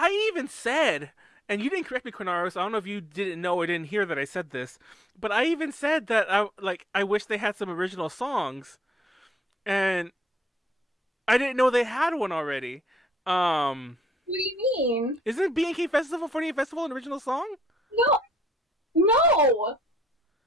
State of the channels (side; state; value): both; normal; correlation 0.69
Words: even said, and you didn't correct me, Konaru, so I don't know if you didn't know or didn't hear that I said this, but I even said that I wish they had some original songs, and I didn't know they had one already. What do you mean? Isn't BNK Festival 48 Festival an original song? No.